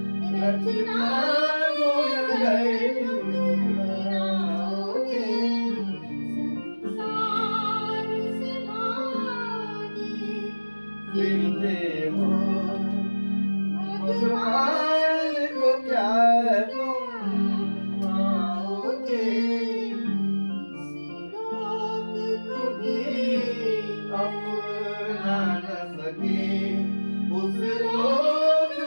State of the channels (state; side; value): inverted; both; correlation -1.00